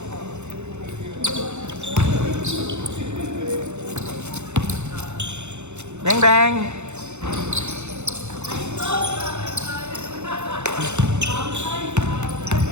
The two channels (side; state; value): left; late; 0.83 ms